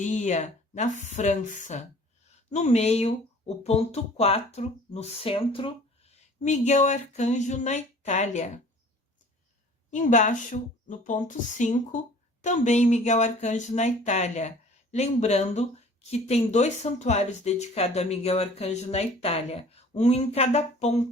na França. No meio, o ponto 4, no centro, Miguel Arcanjo na Itália. Embaixo, no ponto 5, também Miguel Arcanjo na Itália. Lembrando que tem 2 santuários dedicados a Miguel Arcanjo na Itália, um em cada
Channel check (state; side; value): normal; both; correlation 0.49